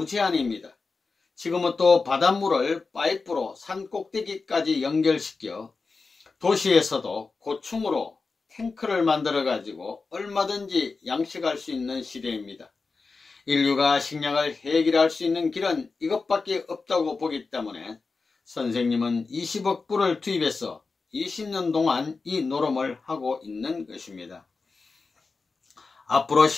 지금은 또 바닷물을 파이프로 산 꼭대기까지 연결시켜 도시에서도 고층으로 탱크를 만들어 가지고 얼마든지 양식할 수 있는 시대입니다. 인류가 식량을 해결할 수 있는 길은 이것밖에 없다고 보기 때문에 선생님은 20억 불을 투입해서 20년 동안 이 노름을 하고 있는 것입니다. 앞으로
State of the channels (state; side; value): quieter; right; 4.2 dB